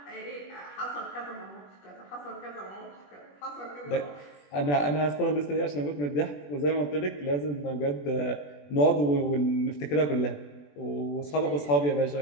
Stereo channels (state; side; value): late; right; 21 ms